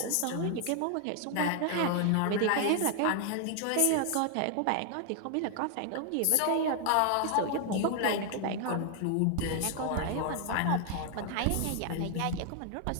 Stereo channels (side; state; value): both; different; correlation 0.00